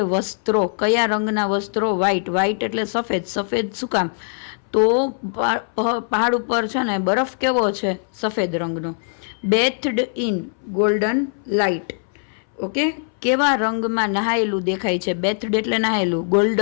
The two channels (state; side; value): silent; right; 61 dB below the other